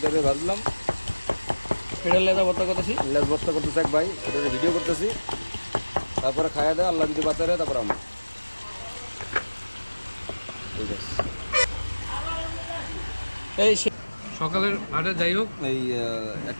দিয়ে ভাজলাম। এটা লেদা বর্তা করতেছি। লেজ ভর্তা করতেছে এক ভাই, ওটা ভিডিও করতেছি। তারপরে খাইয়া দেয়, আল্লাহ যদি বাঁচারে তারপর আমরা। ঠিক আছে। এই সকালের আটে যাই হোক এই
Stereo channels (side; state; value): both; inverted; correlation -1.00